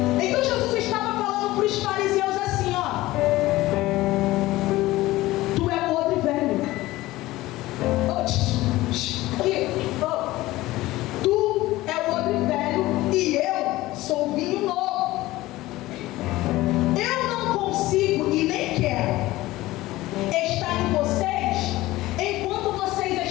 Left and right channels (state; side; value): quieter; right; 17.8 dB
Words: Então Jesus estava falando para os fariseus assim, ó: tu é o odre velho. Tu é o odre velho e eu sou o vinho novo. Eu não consigo e nem quero estar em vocês enquanto